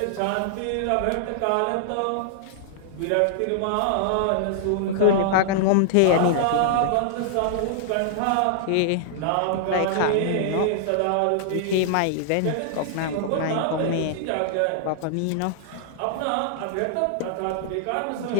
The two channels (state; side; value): different; both; correlation -0.01